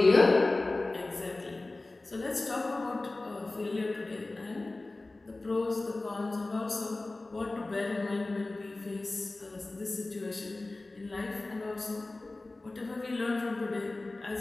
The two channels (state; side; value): quieter; right; 3.1 dB